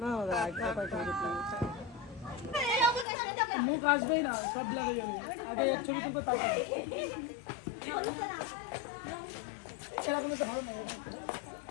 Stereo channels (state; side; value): drops out; right; at 3.1 s